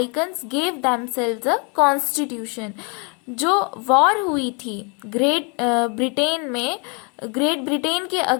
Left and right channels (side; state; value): right; quieter; 34.6 dB